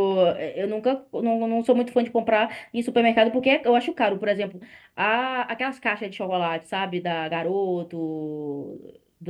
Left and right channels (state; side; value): identical; both; correlation 1.00